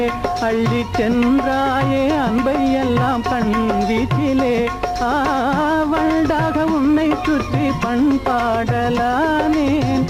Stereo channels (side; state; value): both; identical; correlation 1.00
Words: அள்ளி சென்றாயே அன்பை எல்லாம் கண் வீட்டிலே. வண்டாக உன்னை சுற்றி பண்பாடலானேன்,